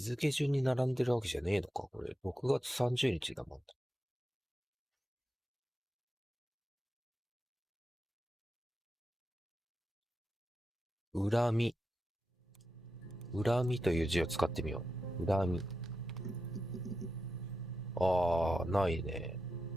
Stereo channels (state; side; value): normal; both; correlation 0.89